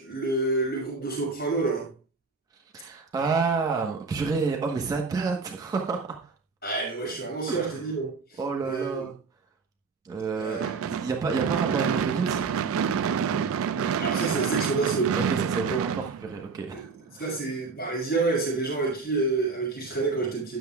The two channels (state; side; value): quieter; left; 4.5 dB